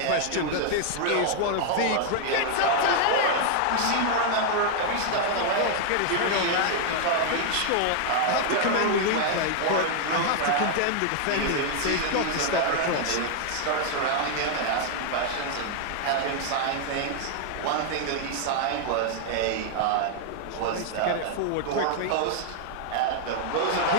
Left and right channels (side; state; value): both; different; correlation 0.00